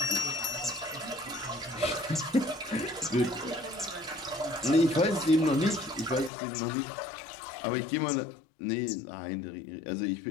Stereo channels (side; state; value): right; drops out; at 6.3 s